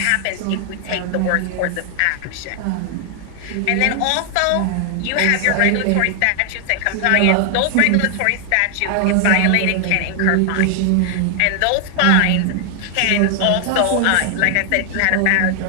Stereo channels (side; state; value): both; different; correlation 0.00